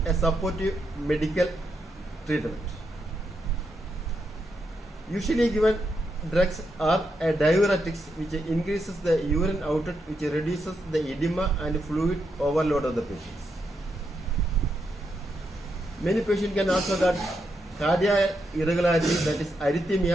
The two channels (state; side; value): normal; both; correlation 0.82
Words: a supportive medical treatment. Usually given drugs are a diuretics which increases the urine output, which reduces the edema and fluid overload of the patients. Many patients can also get cardiac irregularity, that is